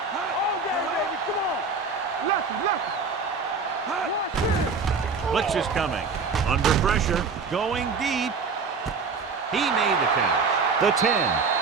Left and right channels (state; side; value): quieter; left; 4.8 dB